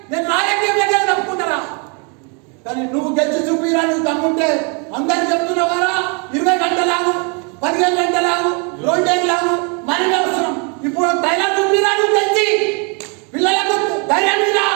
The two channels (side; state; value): left; quieter; 35.1 dB